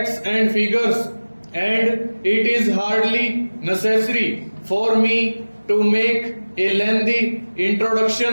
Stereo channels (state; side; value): inverted; both; correlation -1.00